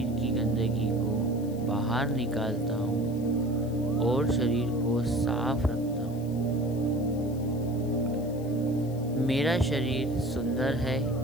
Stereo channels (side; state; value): left; noise; hiss, 23 dB below the sound